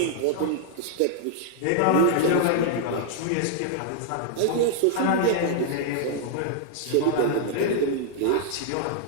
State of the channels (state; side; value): different; both; correlation 0.00